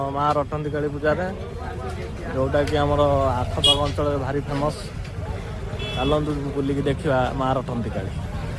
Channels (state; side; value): identical; both; correlation 1.00